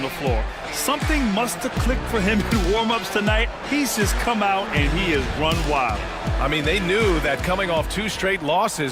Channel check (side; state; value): both; identical; correlation 1.00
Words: the floor. Something must have clicked for him in warm-ups tonight. He's just come out and he has run wild. I mean, they knew that coming off 2 straight